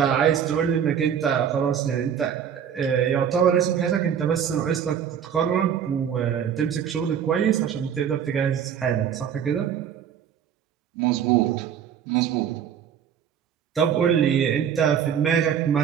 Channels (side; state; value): left; quieter; 8.4 dB